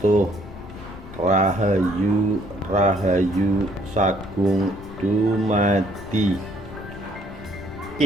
Rahayu Rahayu Sagung dumadi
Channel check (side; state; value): left; noise; rumble, 15 dB below the sound